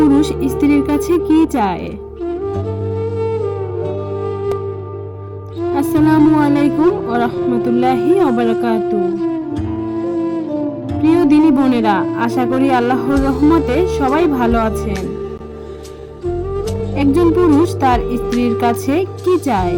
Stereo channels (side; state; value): both; identical; correlation 1.00